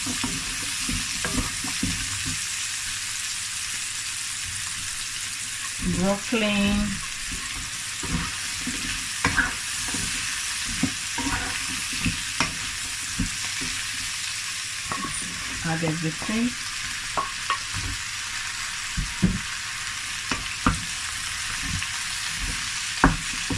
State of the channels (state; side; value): identical; both; correlation 1.00